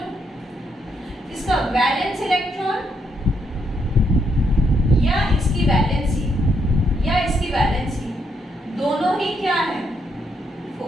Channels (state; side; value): normal; both; correlation 0.76